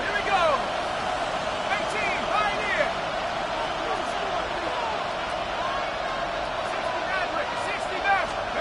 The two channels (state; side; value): identical; both; correlation 1.00